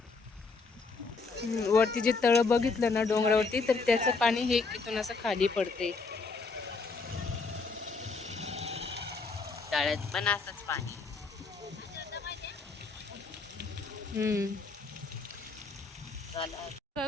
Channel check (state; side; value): quieter; right; 4.2 dB